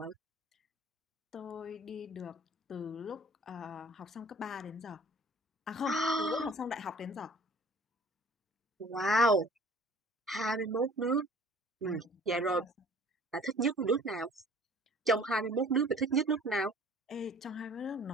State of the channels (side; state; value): both; normal; correlation 0.49